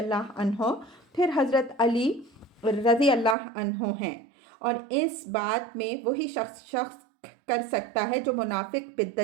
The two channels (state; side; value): drops out; left; at 3.4 s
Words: عنہ، پھر حضرت علی رضی اللہ عنہ ہیں، اور اس بات میں وہی شخص کر سکتا ہے جو منافق،